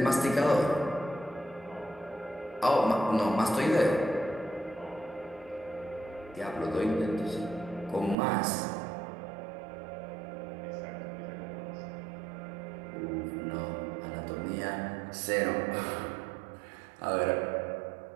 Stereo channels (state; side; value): drops out; left; at 8.2 s